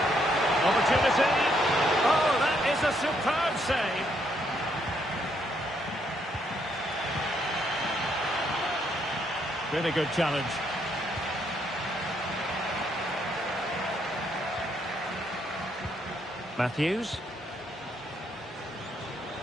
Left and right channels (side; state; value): both; normal; correlation 0.73